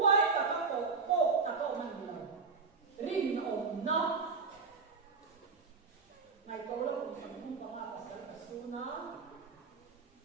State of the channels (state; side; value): quieter; left; 4.8 dB